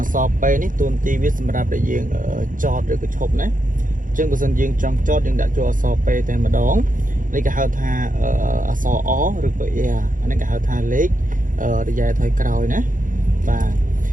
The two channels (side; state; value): left; late; 0.39 ms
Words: so pe ní tuần ti biết xem ra để dương cho được cái chụp nè chứ bữa dân dương trong cho dương đã cho so pe tên mà đón lấy cái hao tha so ó được vậy à anh cái hao tha lấy để dài thời cào nè và